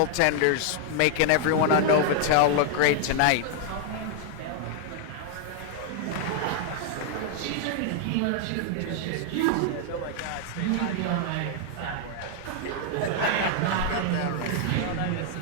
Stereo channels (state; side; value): different; both; correlation 0.00